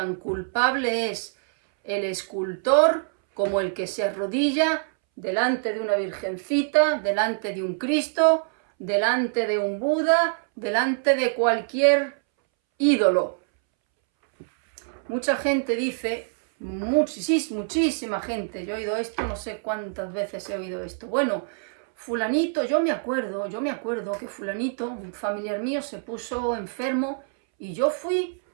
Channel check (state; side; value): silent; left; 62 dB below the other